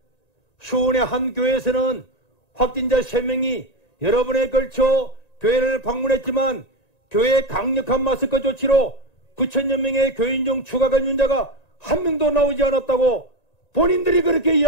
수원의 한 교회에서는 확진자 3명이 여러 번에 걸쳐 교회를 방문했지만 교회 강력한 마스크 조치로 9,000여 명의 교인 중 추가 감염자가 한 명도 나오지 않았다고 본인들이 그렇게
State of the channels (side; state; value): right; late; 1.9 ms